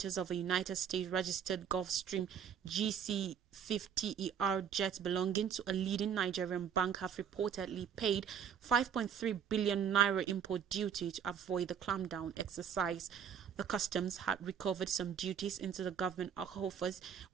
of a United States registered Gulfstream GC-50ER jet belonging to a leading Nigerian bank have reportedly paid 5.3 billion naira import duty to avoid the clampdown exercise. The customs had recovered some duties into the government coffers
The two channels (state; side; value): quieter; left; 8.1 dB